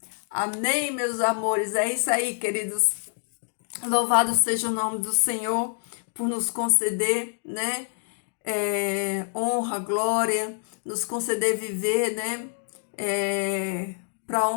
Amém, meus amores. É isso aí, queridos. Louvado seja o nome do Senhor por nos conceder, né? Honra, glória, nos conceder viver, né? Para a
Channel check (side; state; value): right; silent; digital silence